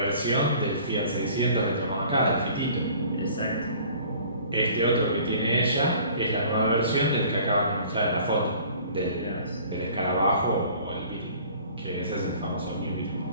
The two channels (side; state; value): both; inverted; correlation -0.50